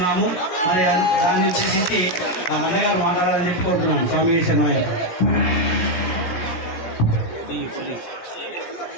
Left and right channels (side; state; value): right; late; 17 ms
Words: మరి దాన్ని ఉద్దేశించి ఆ అన్నగారు మాట్లాడాలని చెప్పి కోరుతున్నాము. స్వామి శరణమయ్య.